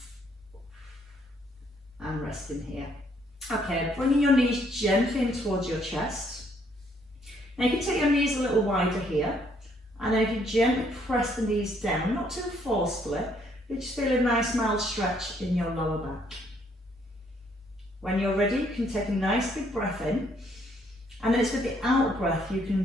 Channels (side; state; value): both; normal; correlation 0.68